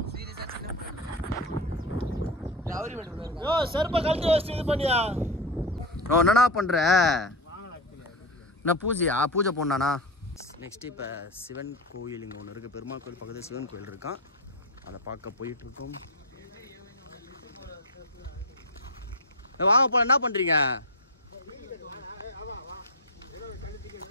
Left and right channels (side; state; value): both; normal; correlation 0.16